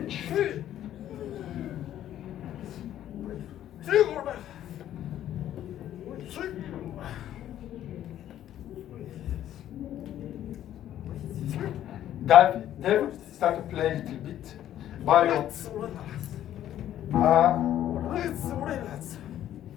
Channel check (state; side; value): quieter; right; 11.8 dB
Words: David, start to play a little bit. Bow your